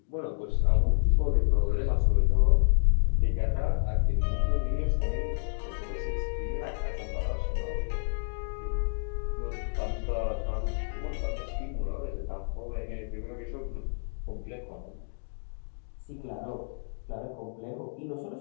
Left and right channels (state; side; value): silent; right; digital silence